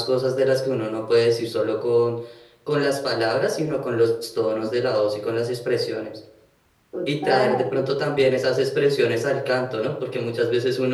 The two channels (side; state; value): both; identical; correlation 1.00